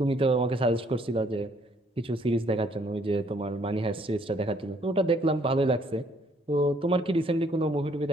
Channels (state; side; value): normal; both; correlation 0.65